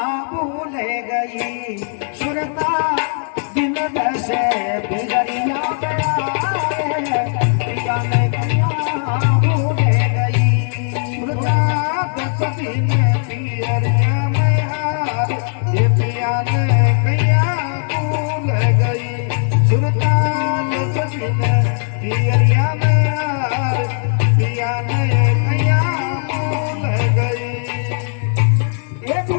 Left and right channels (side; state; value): right; silent; 57 dB below the other